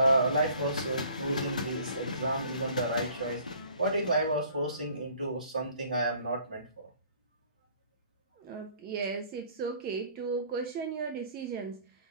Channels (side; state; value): both; inverted; correlation -0.55